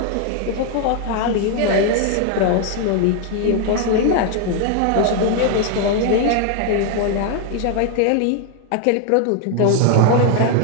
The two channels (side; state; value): both; different; correlation 0.00